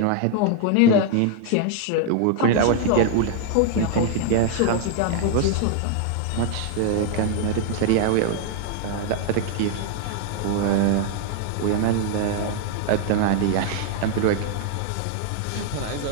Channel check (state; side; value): different; both; correlation 0.00